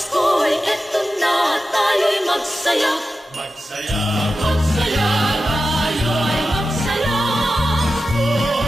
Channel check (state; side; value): normal; both; correlation 0.92